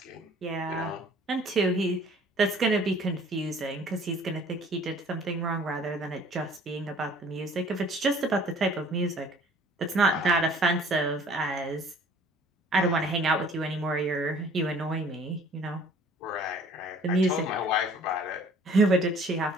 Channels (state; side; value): normal; both; correlation 0.53